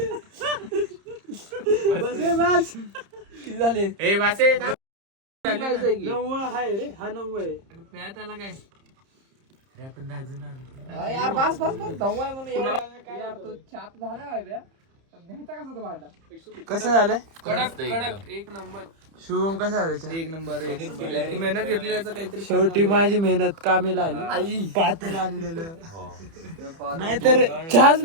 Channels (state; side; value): late; left; 30 ms